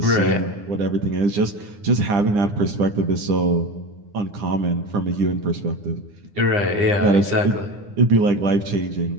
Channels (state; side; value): late; left; 9.8 ms